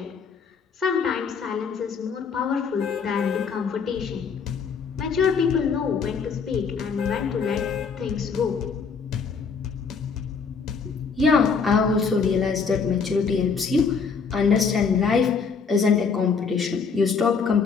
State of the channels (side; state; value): right; quieter; 5.6 dB